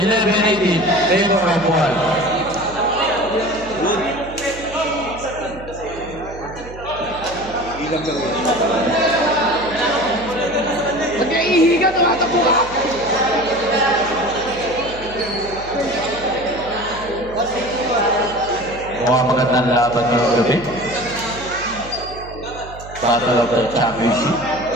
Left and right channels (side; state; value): right; noise; hum, 15 dB below the sound